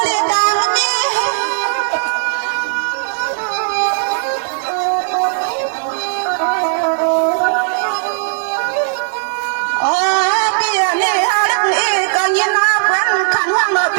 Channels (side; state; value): left; silent; 57 dB below the other